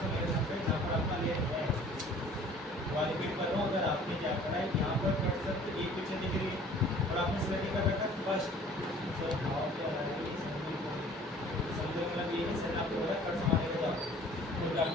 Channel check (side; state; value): both; normal; correlation 0.51